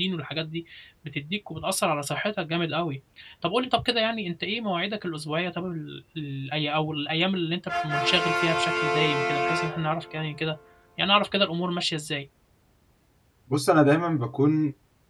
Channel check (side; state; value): both; identical; correlation 1.00